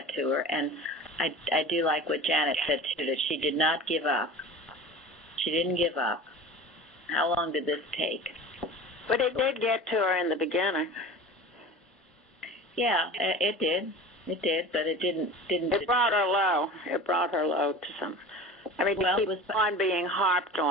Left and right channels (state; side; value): normal; both; correlation 0.36